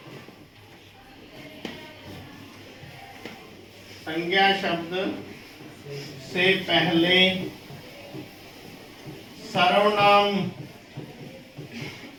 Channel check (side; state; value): both; identical; correlation 1.00